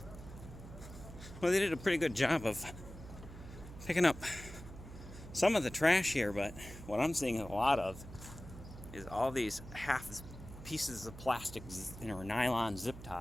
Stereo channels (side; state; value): right; noise; hum, 14 dB below the sound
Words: Well, they did a pretty good job of picking up some of the trash here, but what I'm seeing a lot of is all these half pieces of plastic or nylon zip